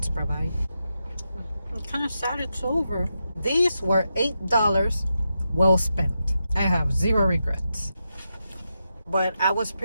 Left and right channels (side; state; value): both; inverted; correlation -0.87